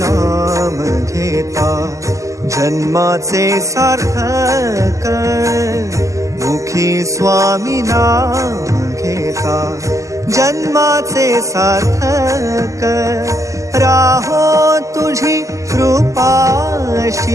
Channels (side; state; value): left; late; 0.16 ms